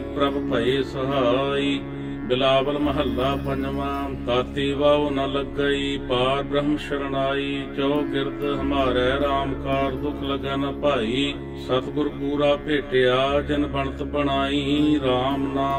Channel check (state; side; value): identical; both; correlation 1.00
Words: ਪ੍ਰਭ ਭਏ ਸਹਾਈ। ਬਿਲਾਵਲ ਮਹੱਲਾ ਪੰਜਵਾਂ। ਤਾਤੀ ਵਾਉ ਨ ਲੱਗਈ ਪਾਰ ਬ੍ਰਹਮ ਸ਼ਰਨਾਈ, ਜੋ ਗਿਰਦ ਹਮਾਰੇ ਰਾਮ ਕਾਰ ਦੁਖ ਲੱਗੈ ਨ ਭਾਈ। ਸਤਿਗੁਰ ਪੂਰਾ ਭੇਟਿਆ ਜਿਨ ਬਣਤ ਬਣਾਈ, ਰਾਮ